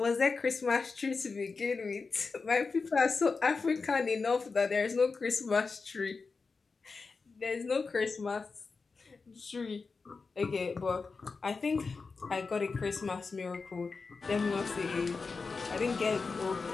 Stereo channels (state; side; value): quieter; right; 4.5 dB